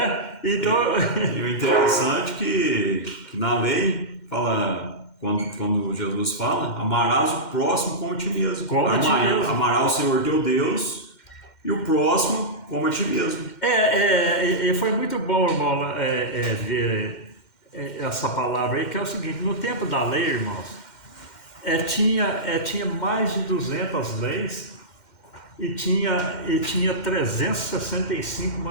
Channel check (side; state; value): right; late; 2.1 ms